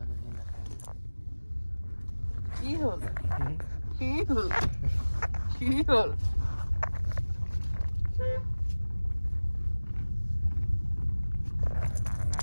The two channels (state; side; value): inverted; both; correlation -1.00